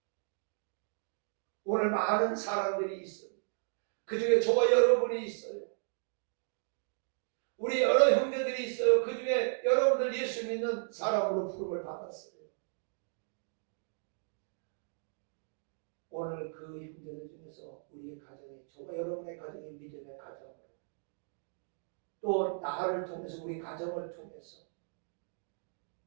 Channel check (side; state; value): left; silent; digital silence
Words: 오늘 많은 사람들이 있어요. 그 중에 저와 여러분이 있어요. 우리 여러 형제들이 있어요. 그 중에 여러분들 예수 믿는 사람으로 부름을 받았어요. 오늘 그 형제들 중에서 우리의 가정이, 저와 여러분의 가정이 믿음의 가정으로, 또 나를 통해서 우리 가정을 통해서